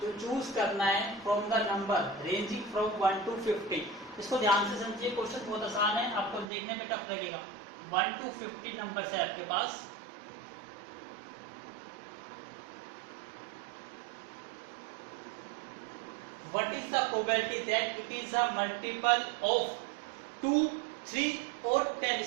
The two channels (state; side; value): drops out; left; at 6.5 s